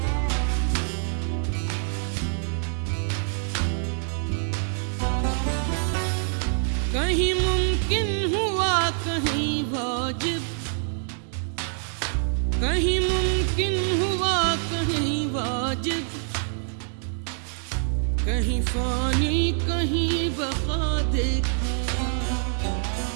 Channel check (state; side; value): silent; left; digital silence